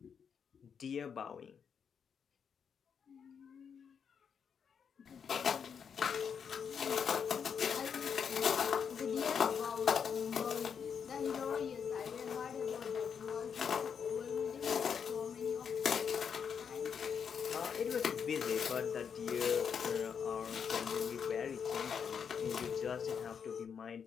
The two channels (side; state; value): right; quieter; 7.0 dB